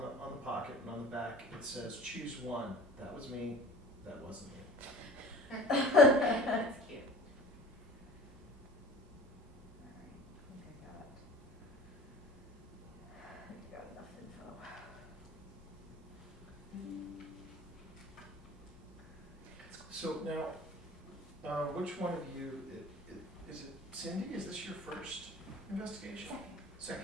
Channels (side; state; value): both; normal; correlation 0.42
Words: the pocket, and on the back it says "Choose one." That was me. That wasn't me. That's cute. Alright, I think I got enough info. So now, which one of you is it? Cindy, is this your first investigation?